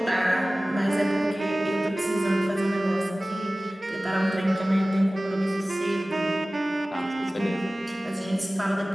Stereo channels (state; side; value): normal; both; correlation 0.97